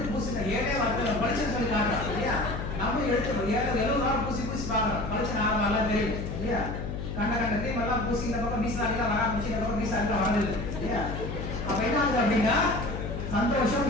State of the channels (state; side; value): noise; left; hum, 5 dB below the sound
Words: பூசின 7 வாரத்துல பளிச்சுன்னு சொல்லி காட்டுறான் இல்லையா? நம்ம எடுத்து 70 வாரம் பூசி பார்க்கறோம், பளிச்சுன்னு ஆரம்பம் தெரியும் இல்லையா? கண்ட கிரீம் எல்லாம் பூசி இந்த பக்கம் மீசாலாம் வர ஆரம்பிச்சு, இந்த பக்கம் மீசாலாம் வரல இல்லையா? அப்ப என்ன ஆகுது அப்படின்னா, சந்தோஷம்